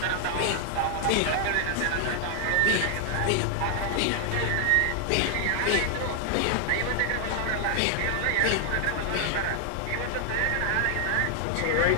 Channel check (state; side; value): different; both; correlation 0.00